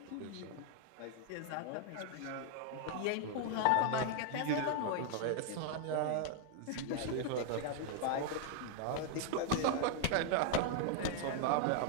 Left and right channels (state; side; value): different; both; correlation 0.00